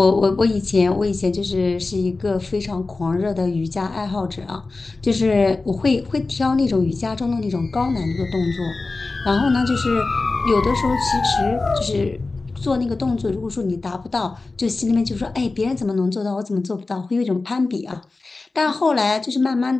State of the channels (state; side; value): quieter; right; 3.6 dB